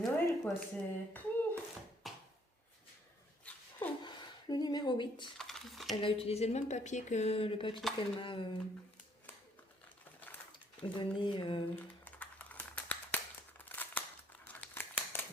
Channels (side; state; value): both; normal; correlation 0.65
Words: quoi. C'est... Le numéro 8. Elle a utilisé le même papier que le papier qu'elle m'a donné.